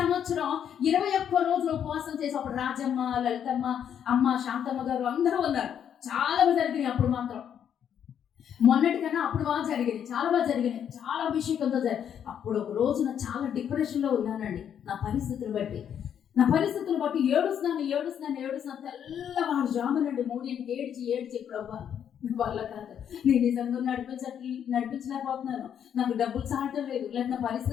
21 రోజులు ఉపవాసం చేసి అప్పుడు రాజమ్మ, లలితమ్మ, అమ్మ శాంతమ్మ గారు అందరూ ఉన్నారు. చాలా బాగా జరిగినాయి. అప్పుడు మాత్రం మొన్నటికన్నా అప్పుడు బాగా జరిగినాయి, చాలా బాగా జరిగినాయి, చాలా అభిషేకంతో అప్పుడు ఒక రోజున చాలా డిప్రెషన్లో ఉన్నానండి. నా పరిస్థితులు బట్టి ఏడుస్తున్నాను. తెల్లవారు జామునండి 3ంటికి ఏడ్చి ప్రభా వల్ల కాదు, నేను నిజంగా నడిపించలేకపోతున్నాను, నాకు డబ్బులు చాలటం లేదు, లేదా నా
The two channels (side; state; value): right; quieter; 8.9 dB